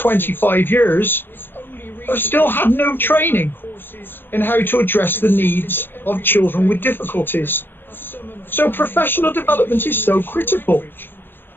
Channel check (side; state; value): right; late; 0.097 ms